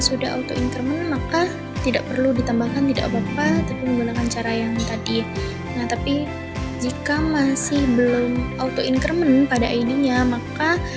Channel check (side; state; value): both; identical; correlation 1.00